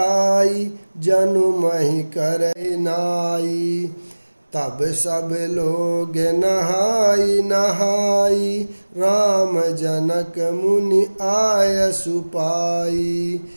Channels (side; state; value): both; inverted; correlation -1.00